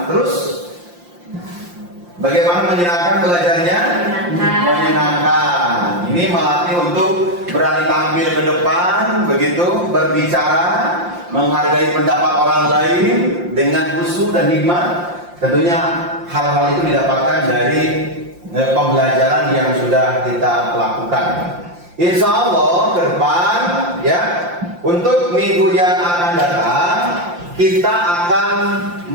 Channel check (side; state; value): left; late; 5.7 ms